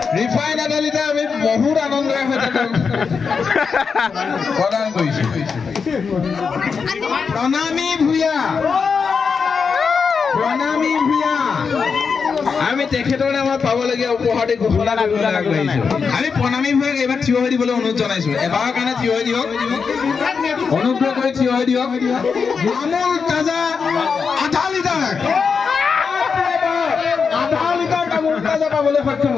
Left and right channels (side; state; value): right; quieter; 5.6 dB